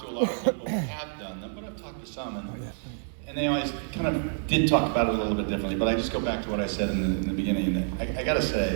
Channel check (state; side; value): silent; left; 59 dB below the other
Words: to a lot of people who have done them, but I've talked to some, and they always kind of did talk about it a little bit differently. But I just go back to what I said in the beginning, and I gotta